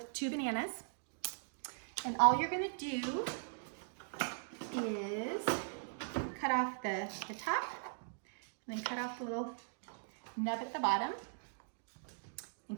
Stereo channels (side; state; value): left; silent; digital silence